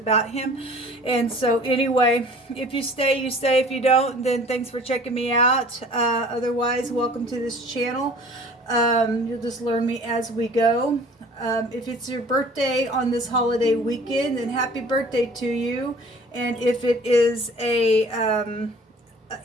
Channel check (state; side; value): normal; both; correlation 0.49